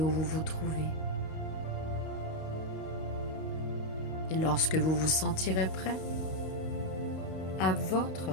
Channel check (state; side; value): late; right; 31 ms